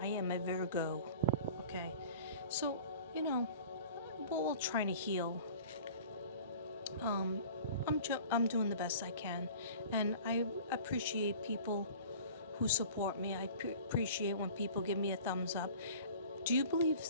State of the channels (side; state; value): both; inverted; correlation -0.44